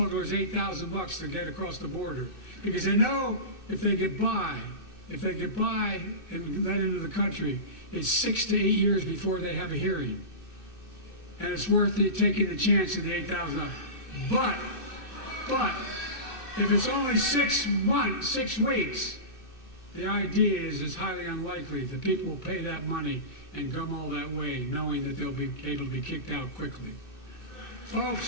$8,000 to get across the border because they know if they get by and let into the country, it's 6 to 8 years before they have a hearing. And it's worth it taking the chance of the $8,000. But if it's only 6 weeks, the idea is it's highly unlikely that people will pay that money and come all that way, knowing that they'll be able to be kicked out quickly.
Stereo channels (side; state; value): right; late; 2.6 ms